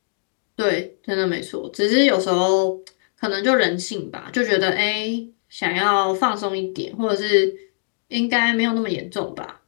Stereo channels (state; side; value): silent; right; digital silence